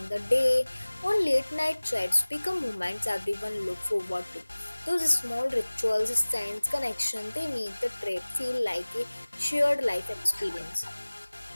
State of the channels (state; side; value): inverted; both; correlation -1.00